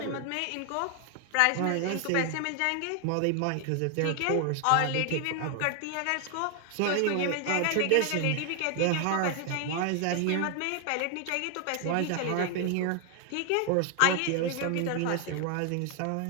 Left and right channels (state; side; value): different; both; correlation 0.00